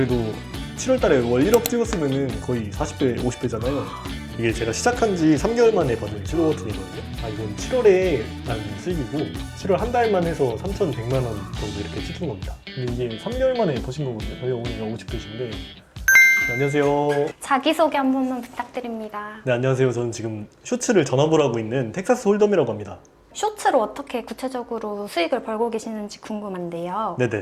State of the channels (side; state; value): both; identical; correlation 1.00